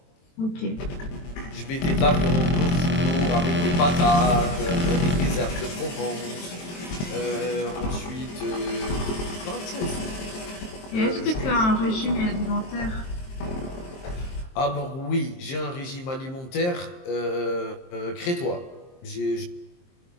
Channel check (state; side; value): late; right; 23 ms